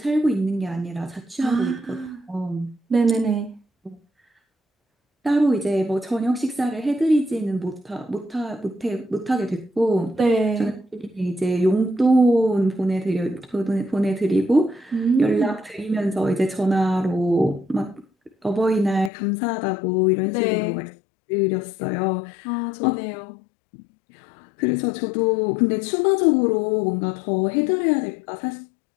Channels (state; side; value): drops out; right; at 19.1 s